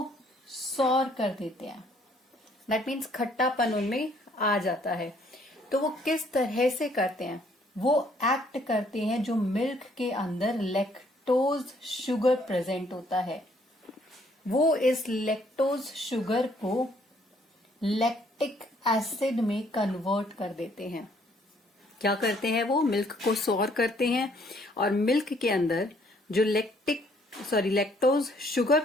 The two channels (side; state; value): both; normal; correlation 0.65